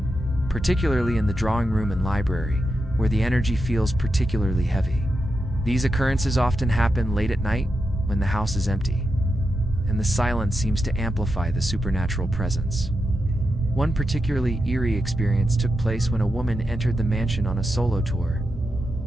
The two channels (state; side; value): normal; both; correlation 0.87